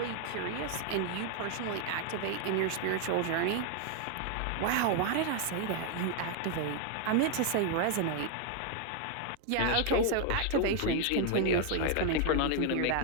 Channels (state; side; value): different; both; correlation 0.00